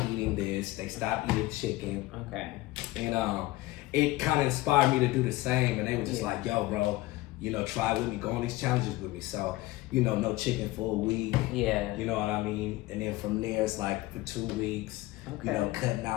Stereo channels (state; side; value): quieter; right; 18.8 dB